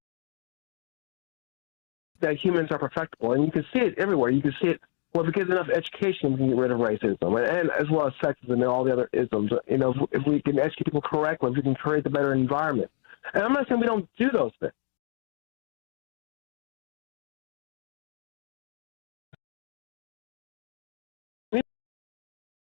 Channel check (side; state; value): right; silent; 59 dB below the other